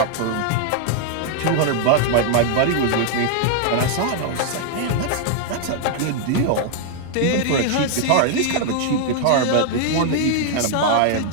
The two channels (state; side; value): different; both; correlation 0.00